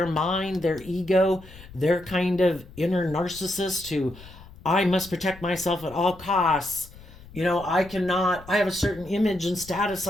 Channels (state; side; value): noise; left; rumble, 19 dB below the sound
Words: mind, their ego, their kind of inner narcissist who, I must protect myself at all costs. I have a certain image and status